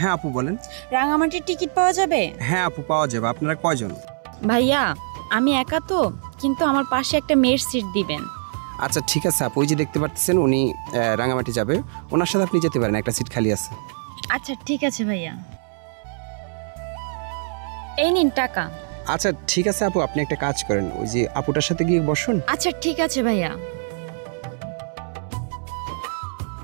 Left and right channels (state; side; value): silent; left; 63 dB below the other